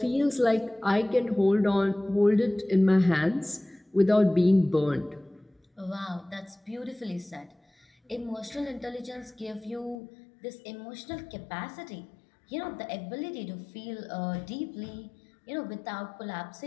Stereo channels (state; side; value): drops out; right; at 10.0 s